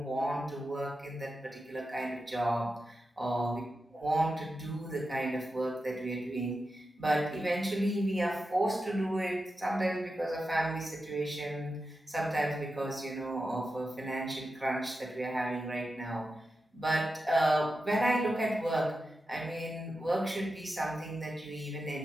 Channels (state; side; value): normal; both; correlation 0.90